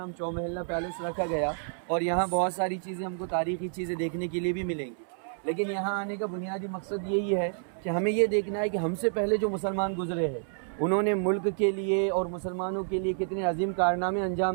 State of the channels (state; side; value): silent; left; 58 dB below the other